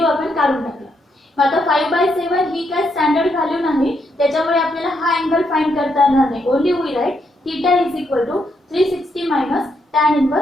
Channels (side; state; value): both; normal; correlation 0.78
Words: आपण काढून टाकला. मग आता 5/7 ही काय स्टँडर्ड व्हॅल्यू नाही त्याच्यामुळे आपल्याला हा अँगल फाइंड करता येणार नाही. Only we write theta is equal to 360 minus tan